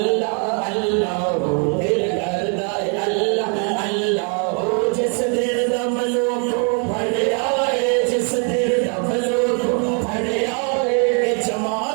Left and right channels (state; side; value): quieter; left; 39.8 dB